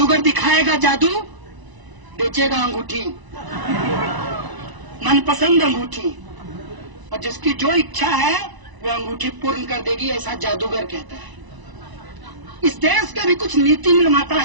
दिखाएगा जादू, बेचेगा अंगूठी, मनपसंद अंगूठी, और जिसकी जो इच्छा है वो अंगूठी पूर्ण कर देगी, ऐसा जादूगर कहता है। इस देश के भी कुछ नीति निर्माता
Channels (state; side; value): late; left; 1.0 ms